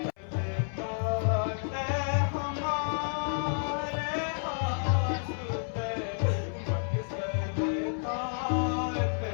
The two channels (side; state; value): right; silent; 57 dB below the other